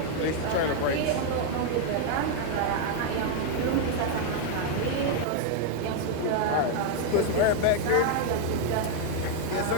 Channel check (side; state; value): both; different; correlation 0.00